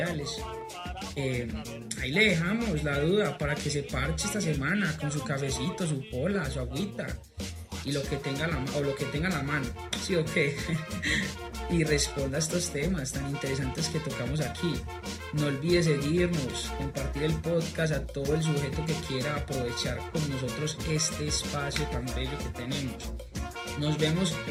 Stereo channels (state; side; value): identical; both; correlation 1.00